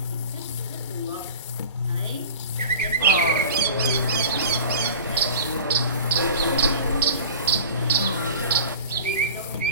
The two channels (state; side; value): inverted; both; correlation -0.39